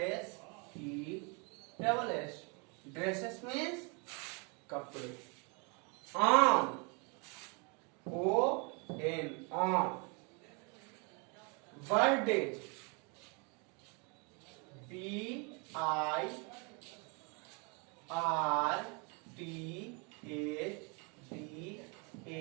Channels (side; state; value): left; quieter; 33.1 dB